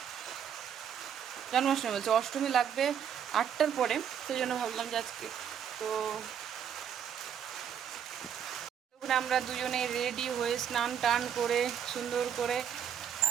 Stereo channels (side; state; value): left; quieter; 8.6 dB